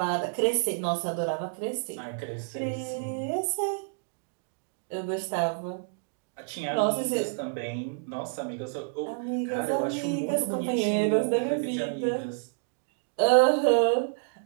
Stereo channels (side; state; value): left; silent; digital silence